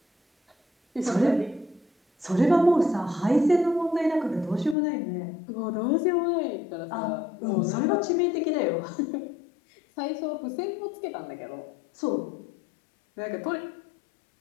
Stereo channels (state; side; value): drops out; right; at 4.8 s